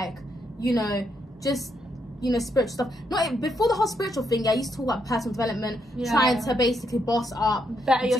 you know, just, you know, spiritual stuff. Not before the whole spiritual thing. I used to talk about personal development, trying to basically boss up, better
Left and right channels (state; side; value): normal; both; correlation 0.78